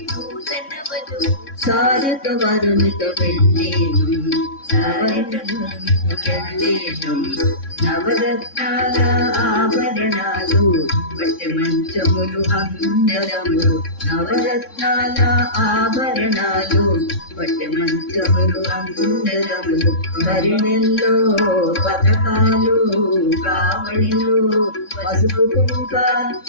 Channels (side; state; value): right; late; 3.6 ms